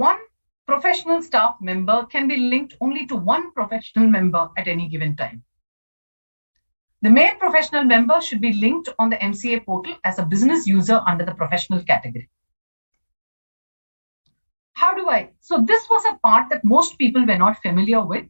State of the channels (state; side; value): inverted; both; correlation -1.00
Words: professional staff member can be linked only to one professional member at any given time. The main professional member should be linked on the MCA portal as a business user under the professional category. How do I? So this was a part that most people were not familiar with.